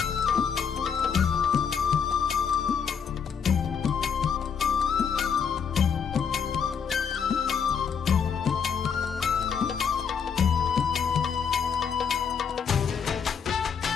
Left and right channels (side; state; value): right; quieter; 6.9 dB